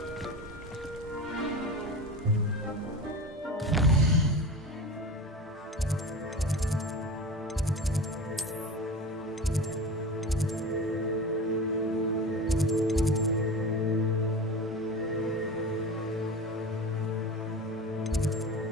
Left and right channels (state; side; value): normal; both; correlation 0.31